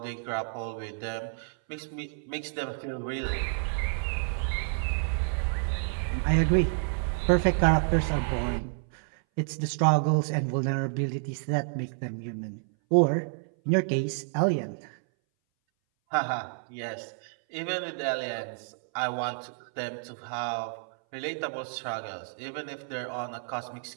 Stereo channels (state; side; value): silent; left; 58 dB below the other